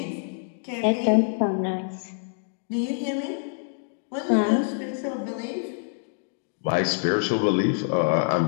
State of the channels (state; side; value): silent; right; digital silence